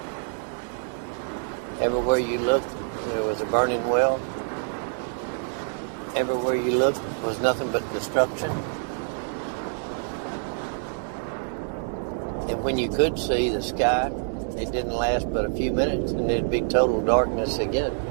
Everywhere you looked, there was a burning well. Everywhere you looked was nothing but destruction. And when you could see the sky, it didn't last but a few minutes, and it'd be total darkness again.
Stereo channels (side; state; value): left; silent; 61 dB below the other